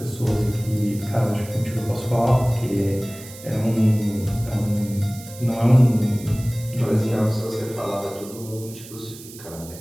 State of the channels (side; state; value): right; noise; hiss, 17 dB below the sound